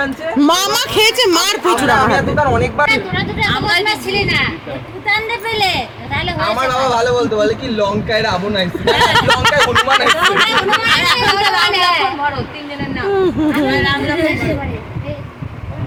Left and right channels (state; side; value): identical; both; correlation 1.00